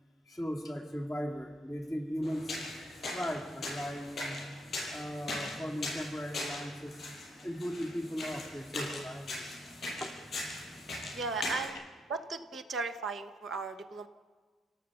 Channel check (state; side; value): normal; both; correlation 0.77